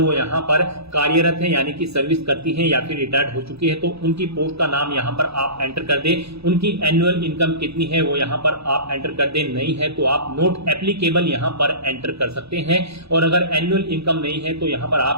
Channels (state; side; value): late; left; 0.78 ms